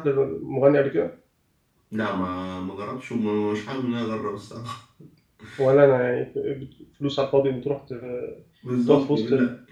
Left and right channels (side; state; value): both; identical; correlation 1.00